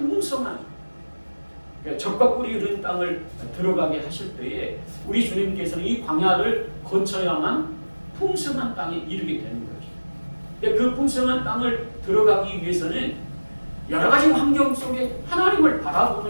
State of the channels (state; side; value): inverted; both; correlation -1.00